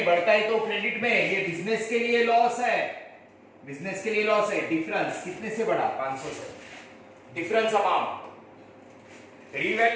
बढ़ता है तो क्रेडिट में, ये बिजनेस के लिए लॉस है, डिफरेंस कितने से बढ़ा? 500 से, difference amount.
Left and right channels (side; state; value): both; identical; correlation 1.00